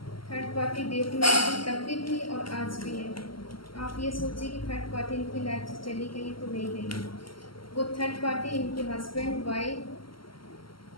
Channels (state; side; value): late; right; 0.74 ms